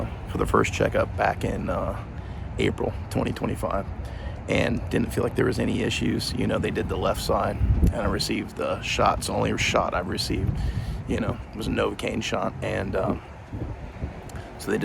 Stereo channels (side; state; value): both; identical; correlation 1.00